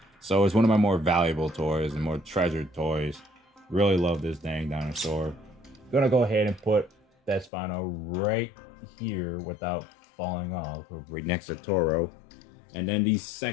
So it's one of my more valuable toys and more treasured toys. Really love this dang dinosaur. Gonna go ahead and put that Spino right here without falling off, right next to Toro. And then the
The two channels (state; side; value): drops out; right; at 7.5 s